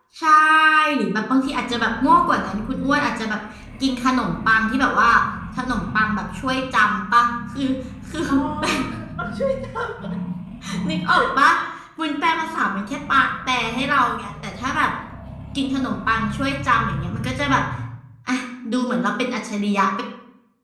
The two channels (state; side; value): identical; both; correlation 1.00